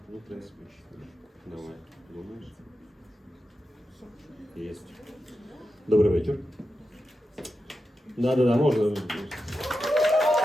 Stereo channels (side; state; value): both; normal; correlation 0.90